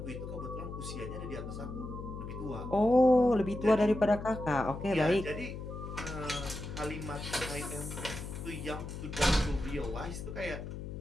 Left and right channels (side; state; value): left; noise; hum, 8 dB below the sound